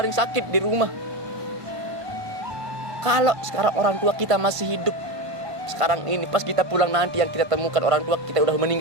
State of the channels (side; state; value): left; late; 1.5 ms